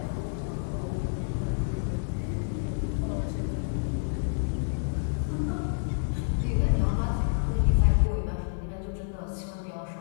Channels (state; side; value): silent; right; digital silence